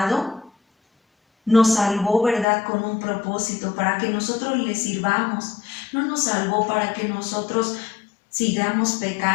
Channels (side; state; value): right; drops out; at 2.5 s